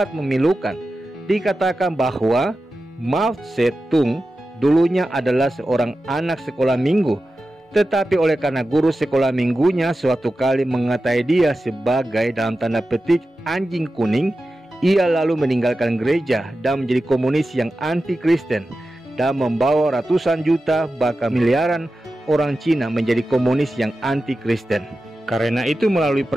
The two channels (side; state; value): both; normal; correlation 0.93